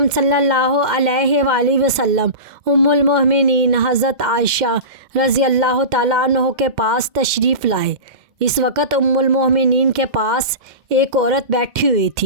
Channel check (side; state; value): left; late; 2.1 ms